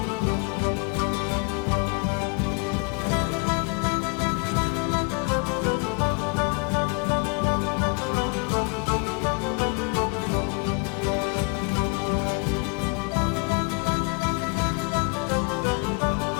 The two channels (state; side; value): quieter; right; 35.6 dB